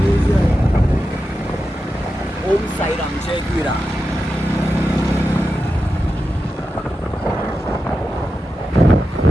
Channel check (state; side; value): normal; both; correlation 0.90